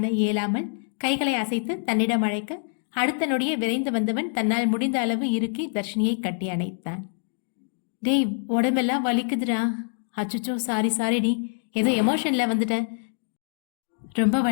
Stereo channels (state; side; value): silent; right; digital silence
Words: இயலாமல் கைகளை அசைத்து தன்னிடம் அழைக்க, அடுத்த நொடியே விரைந்து வந்தவன் தன்னால் முடிந்த அளவு இறுக்கி தர்ஷினியை கட்டி அணைத்தான். டேய், உடம்பெல்லாம் வலிக்குதுடா. அச்சுச்சோ, சாரிடி, ஏதோ எமோஷன்ல வந்துட்டேன். ரொம்ப